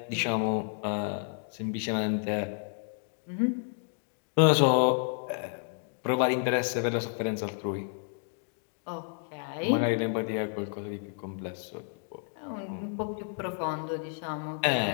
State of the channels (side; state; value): right; silent; 57 dB below the other